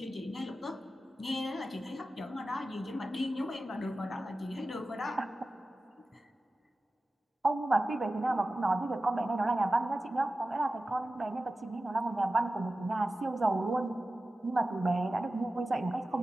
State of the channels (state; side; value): normal; both; correlation 0.95